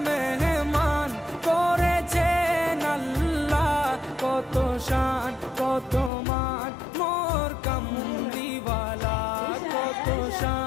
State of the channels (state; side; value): drops out; right; at 6.1 s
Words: মেহমান করেছেন আল্লাহ, কত শান কত মান মোর কামলিওয়ালা, কত